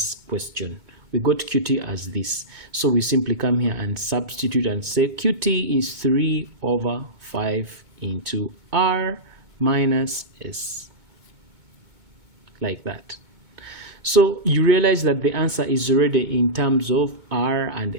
question. We got QT as this. So we simply come here and substitute and say QT is 3/5 into R minus S. Like that. So you realize that the answer is already in terms of R and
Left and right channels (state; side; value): late; left; 2.2 ms